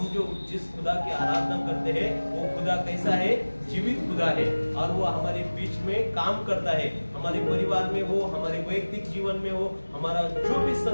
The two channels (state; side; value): inverted; both; correlation -1.00